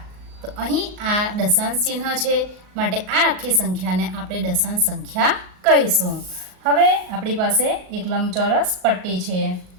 તો અહીં આ દશાંશ ચિહ્ન છે, માટે આ આખી સંખ્યાને આપણે દશાંશ સંખ્યા કહીશું. હવે આપણી પાસે એક લંબચોરસ પટ્ટી છે.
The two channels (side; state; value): left; late; 38 ms